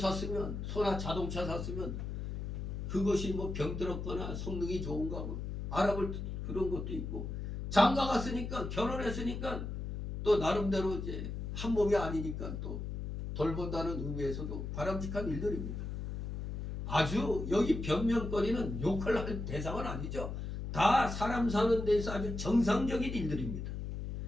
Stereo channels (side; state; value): left; noise; hum, 5 dB below the sound